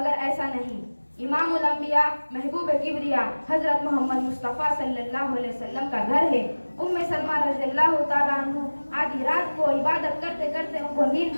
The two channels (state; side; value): inverted; both; correlation -1.00